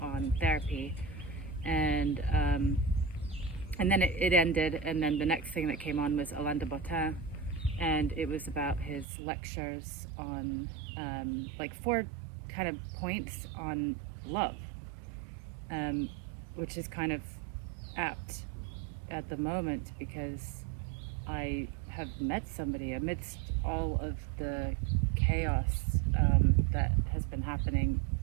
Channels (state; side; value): drops out; left; at 9.1 s